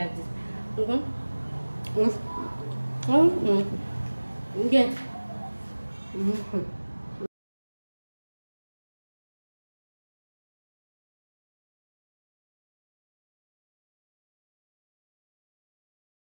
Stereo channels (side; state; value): both; inverted; correlation -1.00